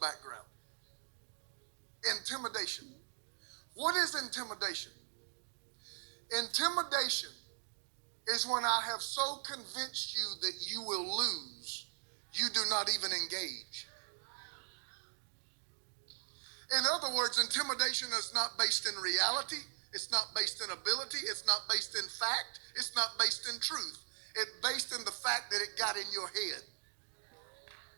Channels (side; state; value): left; silent; digital silence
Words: Intimidation. What is intimidation? Intimidation is when I have so convinced you that you will lose, you do not even engage. In other words, intimidation is not based in reality. It's not based in ability. It's not based in fact. It's not based in truth. It's based in the fact that it got in your head.